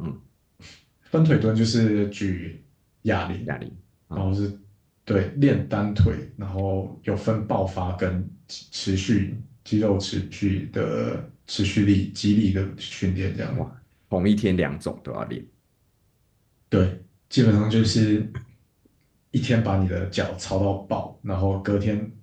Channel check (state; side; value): identical; both; correlation 1.00